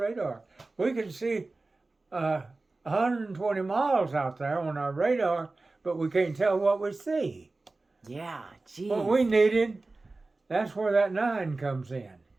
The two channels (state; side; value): quieter; left; 3.3 dB